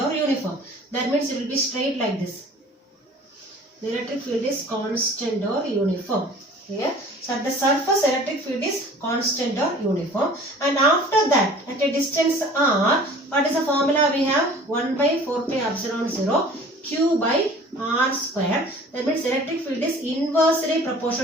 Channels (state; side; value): normal; both; correlation 0.47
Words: or uniform. That means it will be straight like this. The electric field is constant or uniform. Here. So at the surface, electric field is constant or uniform. And after that, at a distance r, what is the formula we have? 1 by 4 pi epsilon 0 q by r square. That means electric field is inversely